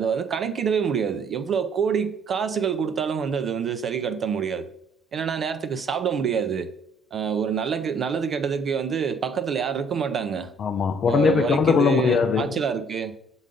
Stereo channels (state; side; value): normal; both; correlation 0.61